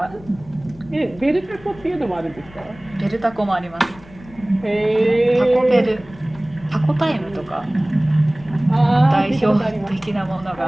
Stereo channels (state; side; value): noise; left; rumble, 22 dB below the sound